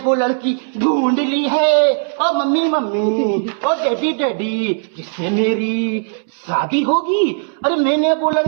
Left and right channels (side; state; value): left; silent; 68 dB below the other